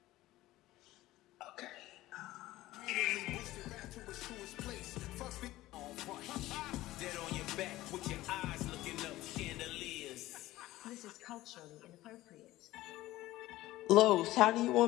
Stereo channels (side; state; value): right; quieter; 16.7 dB